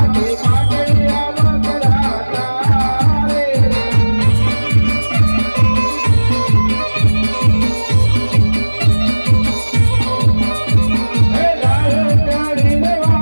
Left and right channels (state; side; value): inverted; both; correlation -1.00